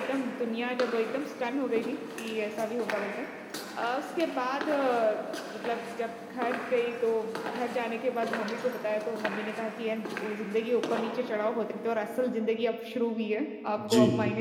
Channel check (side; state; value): both; identical; correlation 1.00